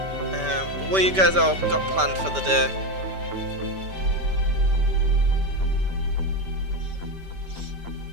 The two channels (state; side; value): late; left; 5.1 ms